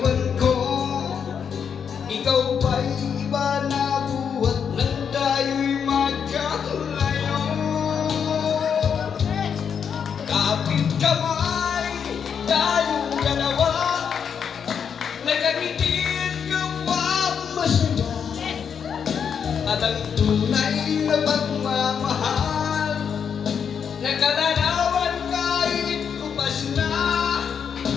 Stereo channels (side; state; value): right; quieter; 7.2 dB